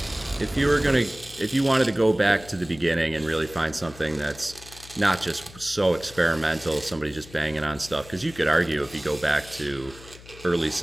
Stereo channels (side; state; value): left; noise; hum, 19 dB below the sound